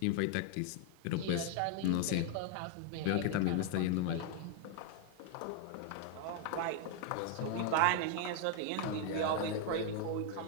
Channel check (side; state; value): both; different; correlation 0.00